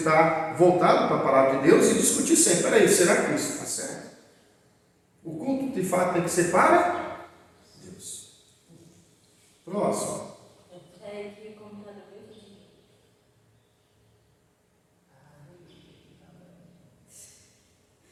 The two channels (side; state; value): both; identical; correlation 1.00